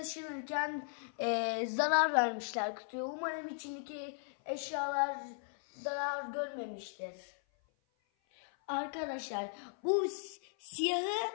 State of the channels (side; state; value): right; silent; 53 dB below the other